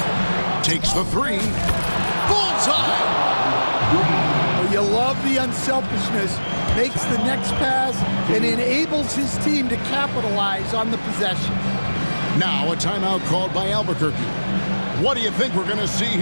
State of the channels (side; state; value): both; inverted; correlation -1.00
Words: takes the three. Bullseye! Well, you love the unselfishness. Makes the next pass and enables his team to capitalize on the possession. Now a timeout called by Albuquerque. What do you think we're going to see